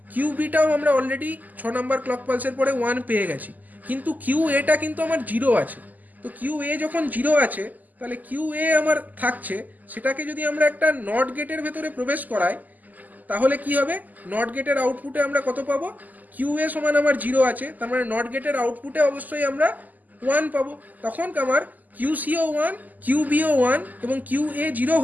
কিউবিটাও আমরা অলরেডি 6 নাম্বার ক্লক পালসের পরে 1 পেয়ে গেছি, কিন্তু কিউ এটা কিন্তু আমার 0 আছে। তো কিউ এ যখন 0 আছে, তাহলে কিউ এ আমার থাকছে, সেটাকে যদি আমরা একটা নট গেটের ভেতরে প্রবেশ করাই, তাহলে কি হবে, নট গেটের আউটপুটে আমরা কত পাবো, কিউ এ সমান আমার 0 আছে, তার মানে নট গেটের আউটপুটে অবশ্যই আমরা 1 পাবো। তখন আমার কিউসিও 1, কিউবিও 1 এবং কিউ এ 0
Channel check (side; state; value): left; late; 0.082 ms